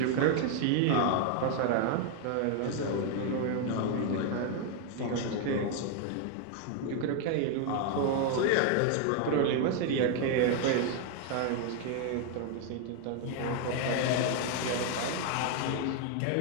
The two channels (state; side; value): different; both; correlation 0.00